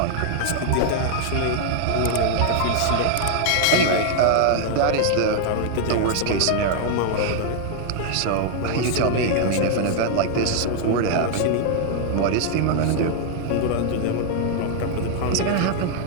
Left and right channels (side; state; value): both; different; correlation 0.00